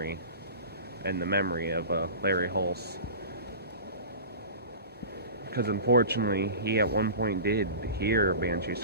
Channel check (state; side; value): inverted; both; correlation -0.34